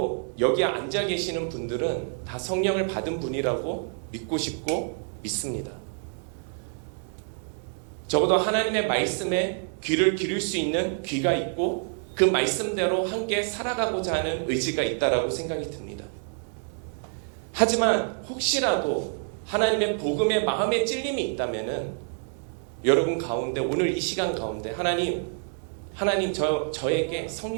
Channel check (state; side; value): silent; left; 60 dB below the other